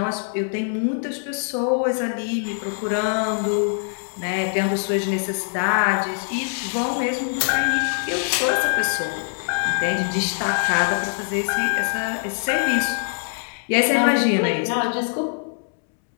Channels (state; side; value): silent; right; 63 dB below the other